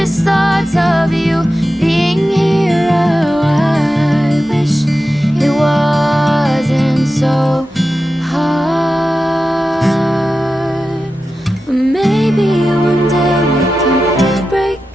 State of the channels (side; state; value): both; normal; correlation 0.92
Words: thoughts of you being here. Oh, I wish it wasn't so hard. But maybe one day we can break